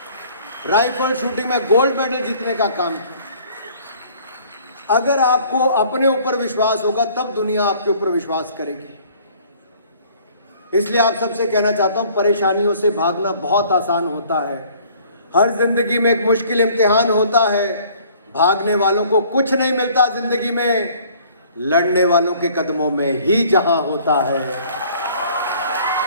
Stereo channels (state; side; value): inverted; both; correlation -0.55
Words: राइफल शूटिंग में गोल्ड मेडल जीतने का काम किया। अगर आपको अपने ऊपर विश्वास होगा, तब दुनिया आपके ऊपर विश्वास करेगी। इसलिए आप सबसे कहना चाहता हूं, परेशानियों से भागना बहुत आसान होता है। हर जिंदगी में एक मुश्किल इम्तिहान होता है। भागने वालों को कुछ नहीं मिलता जिंदगी में, लड़ने वालों के कदमों में ही जहां होता है।